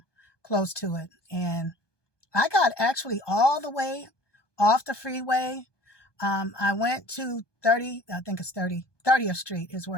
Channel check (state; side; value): late; right; 1.2 ms